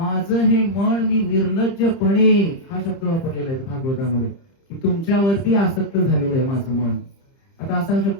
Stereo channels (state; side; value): late; right; 30 ms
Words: हे मन मी निर्लज्जपणे, हा शब्द वापरलेला आहे भागवतामध्ये, की तुमच्यावरती आसक्त झालेलं आहे माझं मन. आता असा